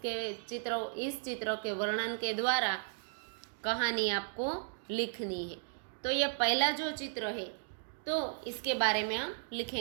चित्र के वर्णन के द्वारा कहानी आपको लिखनी है। तो ये पहला जो चित्र है तो इसके बारे में हम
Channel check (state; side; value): silent; left; digital silence